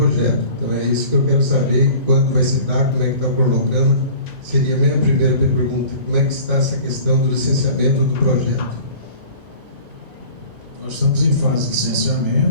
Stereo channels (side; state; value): left; late; 1.9 ms